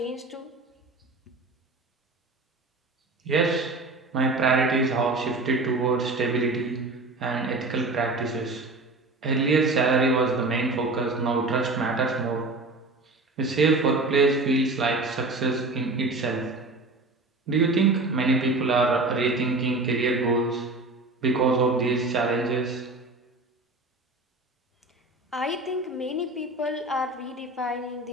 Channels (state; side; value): quieter; left; 3.1 dB